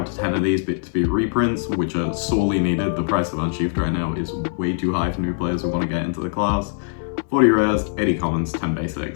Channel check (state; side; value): silent; right; digital silence